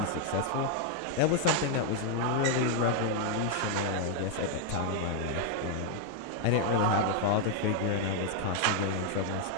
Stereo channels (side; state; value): both; different; correlation 0.00